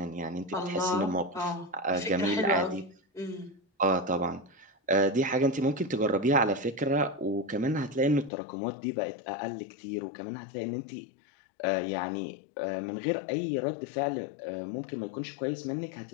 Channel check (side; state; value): right; drops out; at 8.3 s